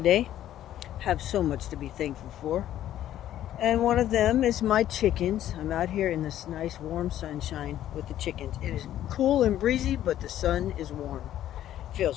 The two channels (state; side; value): quieter; right; 12.1 dB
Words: Have so much to be thankful for. And one of them is my chickens. I'm out here in this nice warm sunshine with the chickens. It is cool and breezy, but the sun is warm.